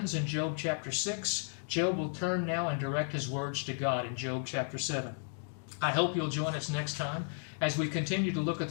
in Job chapter 6, Job will turn now and direct his words to God in Job chapter 7. I hope you'll join us next time as we continue to look at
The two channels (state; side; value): silent; right; 55 dB below the other